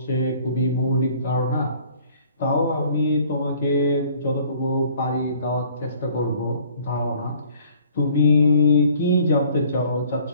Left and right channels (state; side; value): inverted; both; correlation -0.56